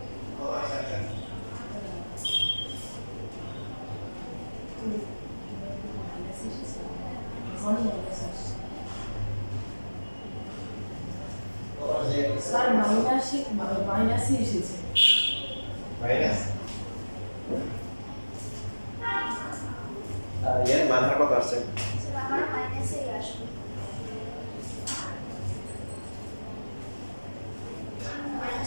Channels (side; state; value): both; inverted; correlation -1.00